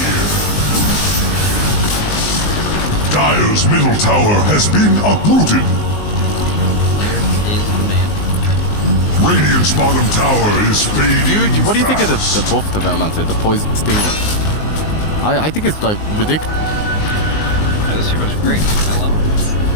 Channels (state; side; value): late; right; 19 ms